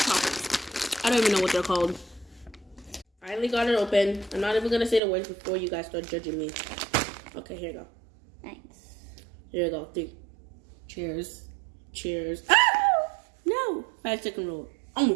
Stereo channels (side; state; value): left; drops out; at 5.0 s